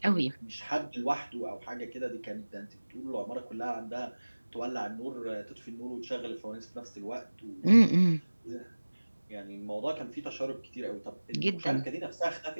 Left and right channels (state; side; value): inverted; both; correlation -1.00